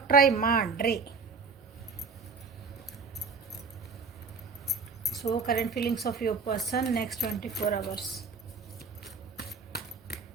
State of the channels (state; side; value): quieter; left; 4.7 dB